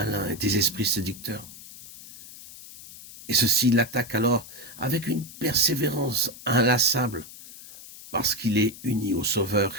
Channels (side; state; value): left; noise; hiss, 17 dB below the sound